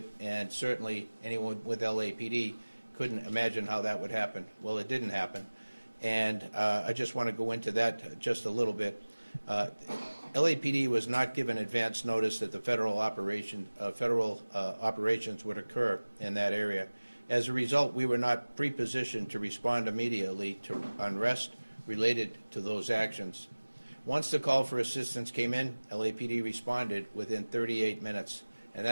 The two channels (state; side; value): inverted; both; correlation -1.00